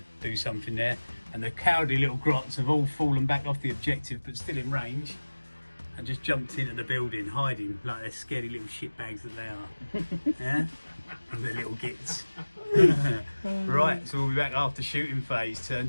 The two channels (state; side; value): inverted; both; correlation -1.00